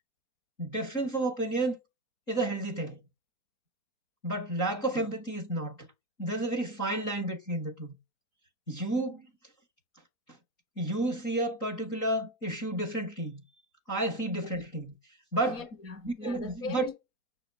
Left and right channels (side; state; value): right; late; 3.9 ms